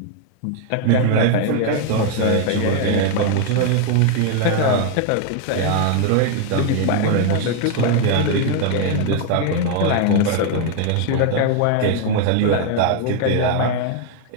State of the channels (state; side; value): different; both; correlation 0.00